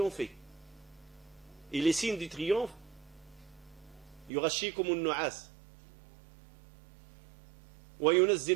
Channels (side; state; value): left; drops out; at 4.3 s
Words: Et les signes du triomphe, يغشيكم النعاس